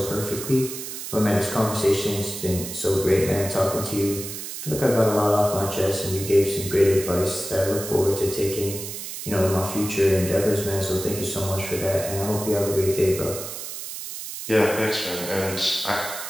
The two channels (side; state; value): right; noise; hiss, 8 dB below the sound